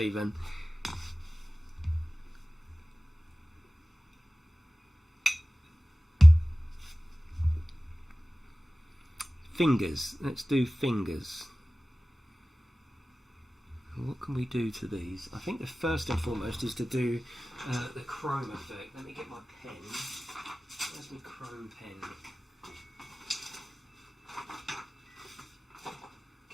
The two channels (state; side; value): normal; both; correlation 0.97